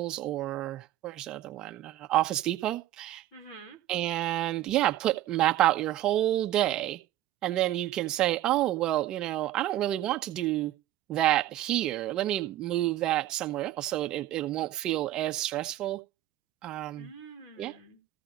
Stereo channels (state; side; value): quieter; left; 13.9 dB